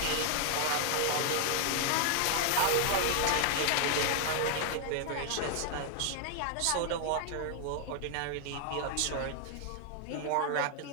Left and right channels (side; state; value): both; different; correlation 0.00